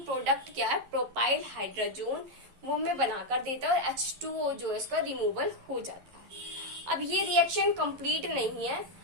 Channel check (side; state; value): left; late; 11 ms